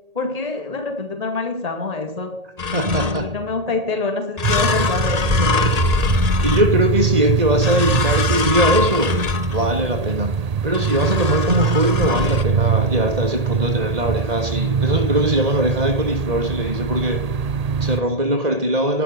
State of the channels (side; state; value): left; late; 1.8 ms